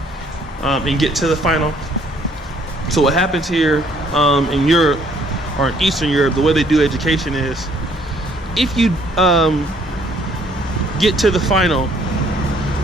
and get to the final. So what happens here in Europe, or in Eastern Europe, the way they do education is, if you get to the final,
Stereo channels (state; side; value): normal; both; correlation 0.63